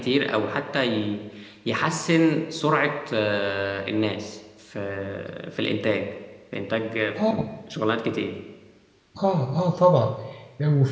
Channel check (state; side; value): identical; both; correlation 1.00